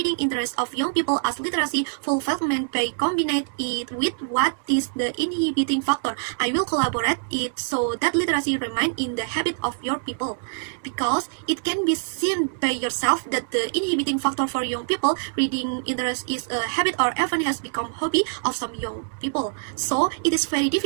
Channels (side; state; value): left; silent; digital silence